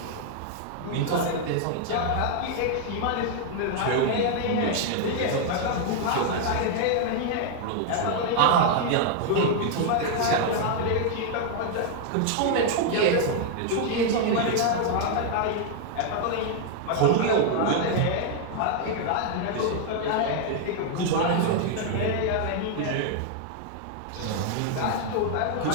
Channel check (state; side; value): different; both; correlation 0.00